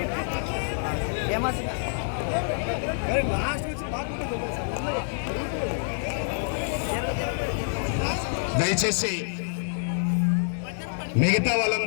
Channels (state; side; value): silent; right; digital silence